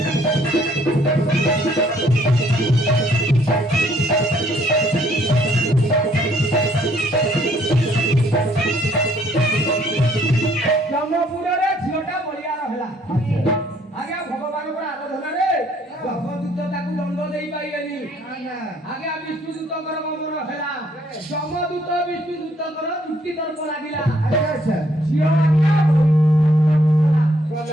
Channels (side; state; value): both; normal; correlation 0.65